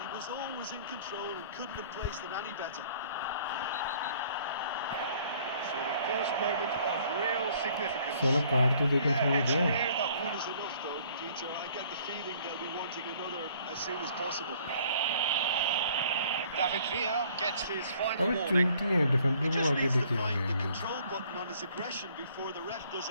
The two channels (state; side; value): inverted; both; correlation -0.58